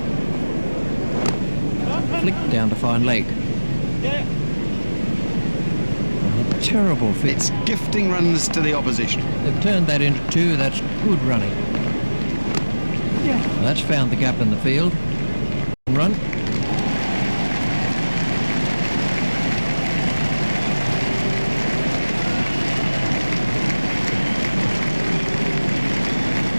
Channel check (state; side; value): inverted; both; correlation -1.00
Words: Flicked down to fine leg. A terrible fit. It's gifting runs to the opposition. They've turned that into two. That's good running. That's found the gap in the field. Run.